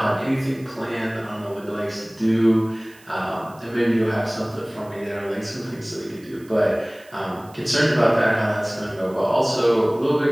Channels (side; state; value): right; noise; hiss, 26 dB below the sound